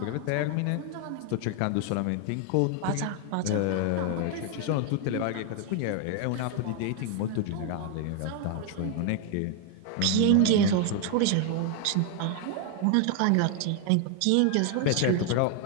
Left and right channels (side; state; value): both; different; correlation 0.00